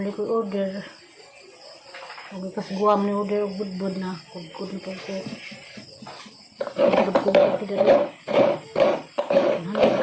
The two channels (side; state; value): both; identical; correlation 1.00